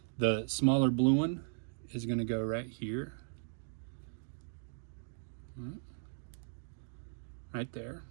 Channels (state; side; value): silent; left; digital silence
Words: The smaller blue one is going to go right here, right there,